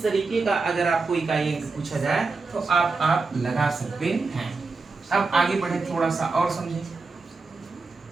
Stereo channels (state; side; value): quieter; left; 4.0 dB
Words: तरीके का अगर आपको इकाई अंक पूछा जाए तो आप लगा सकते हैं। अब आगे बढ़े थोड़ा सा और समझें।